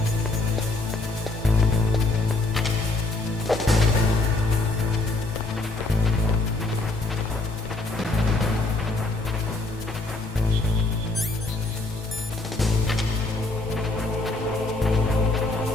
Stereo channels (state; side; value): quieter; right; 3.1 dB